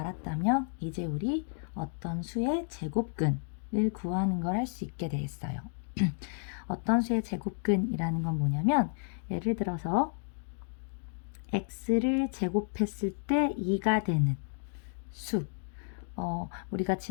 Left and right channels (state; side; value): silent; right; 56 dB below the other